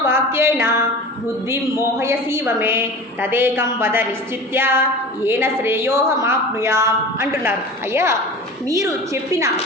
వాక్యేన బుద్ధిం మోహయసీవమే తదేకం వద నిశ్చిత్య ఏన శ్రేయోహమాప్నుయాం అంటున్నారు. అయ్యా మీరు చెప్పిన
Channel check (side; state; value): both; normal; correlation 0.36